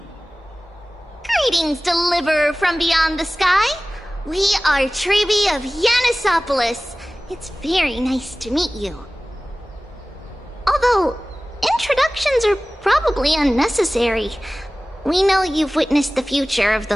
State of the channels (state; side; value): normal; both; correlation 0.98